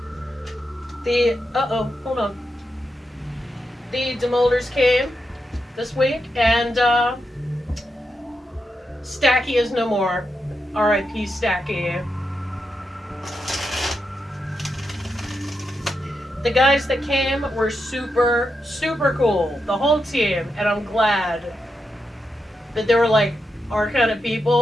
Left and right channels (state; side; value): normal; both; correlation 0.86